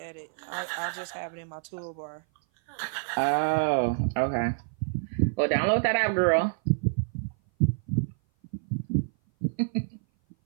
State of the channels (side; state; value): left; silent; 56 dB below the other